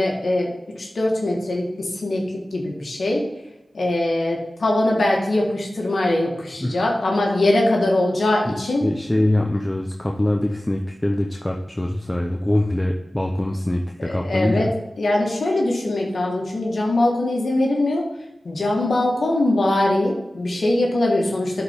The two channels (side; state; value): both; normal; correlation 0.96